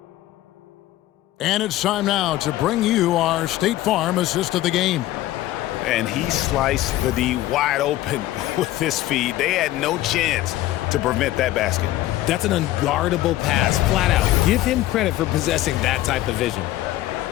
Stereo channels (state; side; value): quieter; right; 15.3 dB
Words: And it's time now to bring you our State Farm assist of the game. And he sliced the D wide open with this feed. They had no chance to prevent that basket. That's an unguardable pass, flat out. Give him credit for possessing that type of vision.